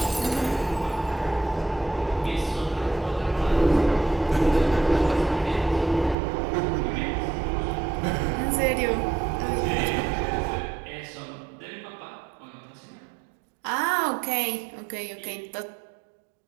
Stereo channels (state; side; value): drops out; left; at 6.2 s